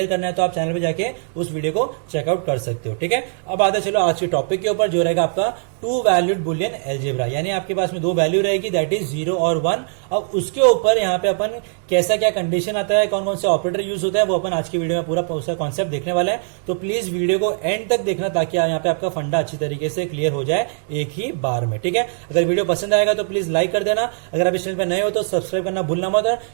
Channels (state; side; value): silent; left; digital silence